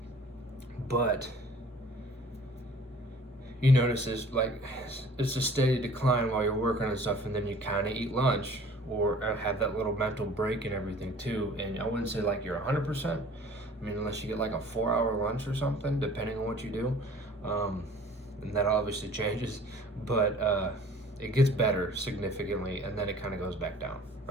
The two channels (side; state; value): both; normal; correlation 0.50